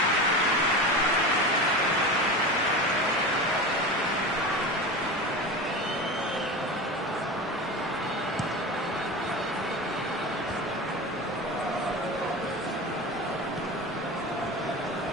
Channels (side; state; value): both; normal; correlation 0.28